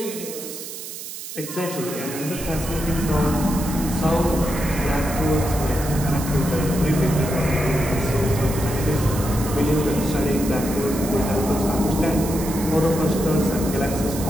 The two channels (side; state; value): right; noise; hiss, 10 dB below the sound